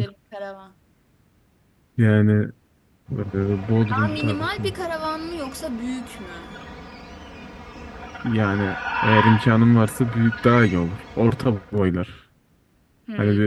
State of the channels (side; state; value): both; identical; correlation 1.00